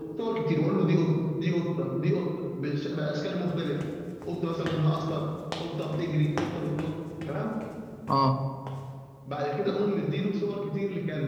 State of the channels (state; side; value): identical; both; correlation 1.00